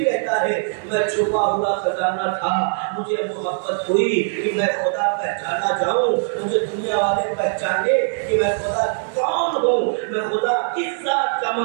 کہتا ہے میں چھپا ہوا خزانہ تھا، مجھے محبت ہوئی کہ میں خدا پہچانا جاؤں، مجھے دنیا والے پہچانے کہ میں خدا کون ہوں، میں خدا کس ذات کا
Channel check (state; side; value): silent; left; digital silence